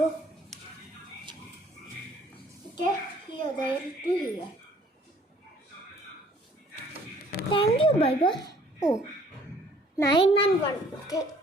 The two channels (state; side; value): normal; both; correlation 0.58